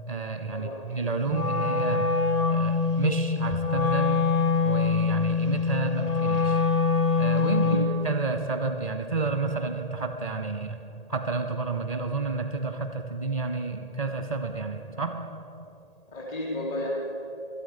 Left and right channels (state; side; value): late; right; 1.8 ms